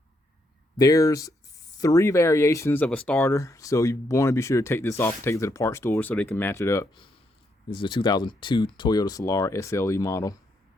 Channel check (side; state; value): both; normal; correlation 0.77